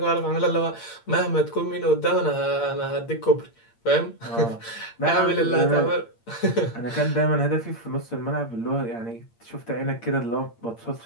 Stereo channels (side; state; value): right; late; 8.7 ms